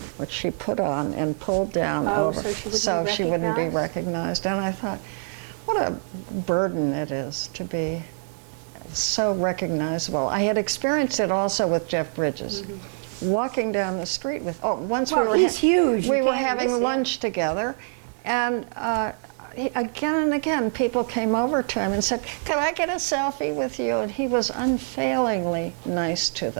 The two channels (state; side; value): silent; left; digital silence